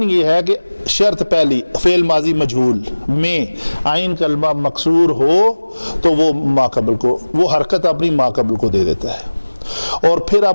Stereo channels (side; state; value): both; inverted; correlation -1.00